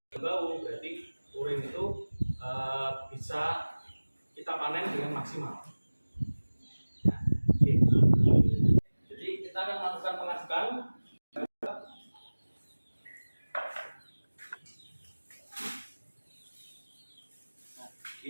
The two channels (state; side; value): inverted; both; correlation -1.00